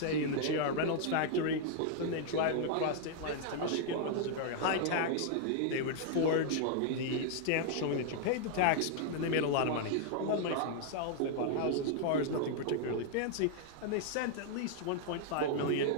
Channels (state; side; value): different; both; correlation -0.01